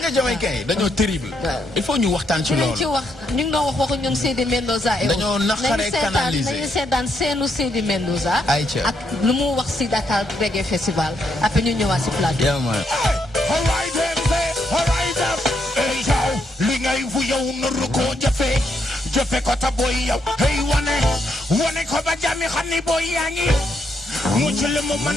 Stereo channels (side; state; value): both; normal; correlation 0.77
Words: Jamaïcain yi dañoo terrible. il faut ñu waxtaan ci loolu. ñu ngi doon waxu ñoom Seydi Mendoza. dañoo naqaree canaliser nañu seetaan seenu Seydi Mendoza. ak lu mu wax si Dakar Reggae Festival après ñu ñëwaat si plateau. li ngay fu yow nuru ko jëfe ko ta boy yow hey wane ko ba jami xam ni boy yaa ngi mucc li mu